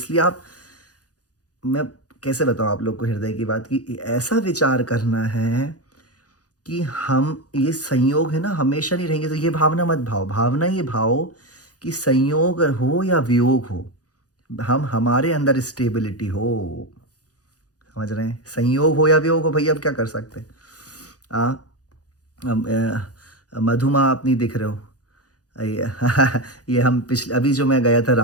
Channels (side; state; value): right; late; 0.68 ms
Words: आप, मैं कैसे बताऊँ आप लोग को हृदय की बात, कि ऐसा विचार करना है कि हम, ये संयोग है ना, हमेशा नहीं रहेंगे। तो ये भावना मत भाओ, भावना ये भाओ कि संयोग हो या वियोग हो, हम हमारे अंदर स्टेबिलिटी हो। समझ रहे हैं? संयोग हो या वियोग हो, भैया अब क्या कर सकते हैं। आ, मधुमा आप नहीं दिख रहे हो। ये ये हम पिछले, अभी जो मैं गया था